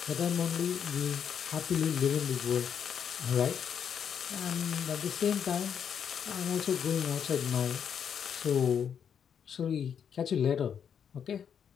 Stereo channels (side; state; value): right; quieter; 7.9 dB